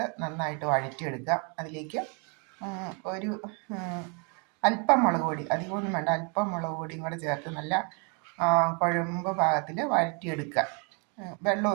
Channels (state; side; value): quieter; left; 35.1 dB